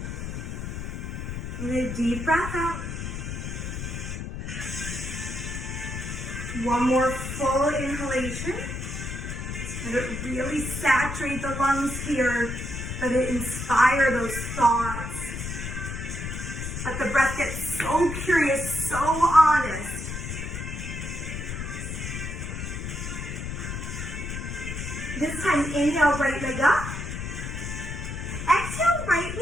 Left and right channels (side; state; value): left; noise; rumble, 5 dB below the sound